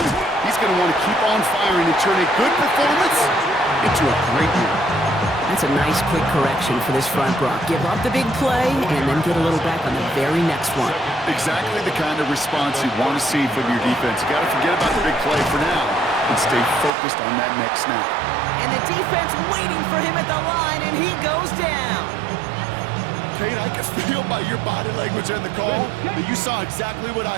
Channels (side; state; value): left; drops out; at 16.9 s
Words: he's going to want to keep on firing and turn a good performance into a great year. That's a nice quick correction for this front, Brock. Give up the big play and then get a little back on the very next one. Exactly the kind of response you want to see from your defense. You got to forget about the big play for now and stay focused on that next snap. And the defense waiting for him at the line, and he goes down. Kate, I can feel by your body language and the call that you saw exactly what